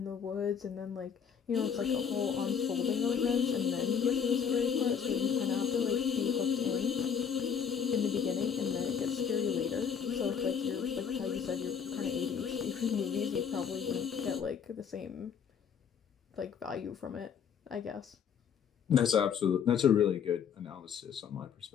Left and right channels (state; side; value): quieter; right; 7.3 dB